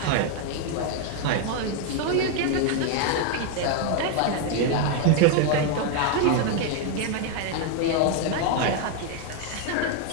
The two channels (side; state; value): both; different; correlation 0.00